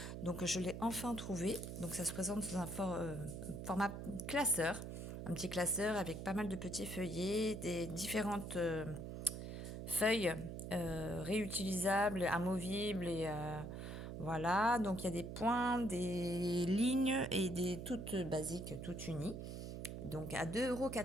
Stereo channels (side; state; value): right; noise; hum, 7 dB below the sound